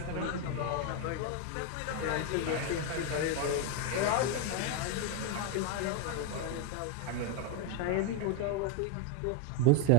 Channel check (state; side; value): different; both; correlation 0.01